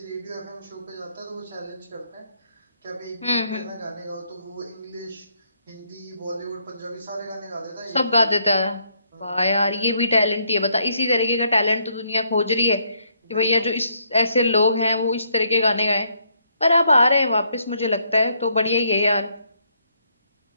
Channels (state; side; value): inverted; both; correlation -0.72